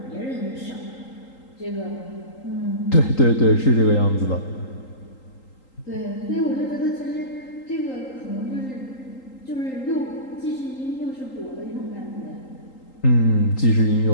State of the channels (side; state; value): right; late; 3.8 ms